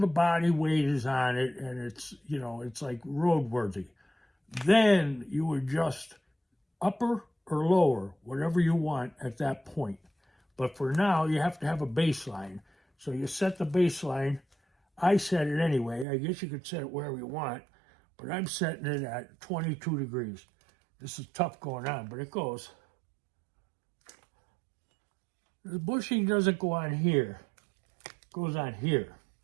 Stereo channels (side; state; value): left; drops out; at 16.1 s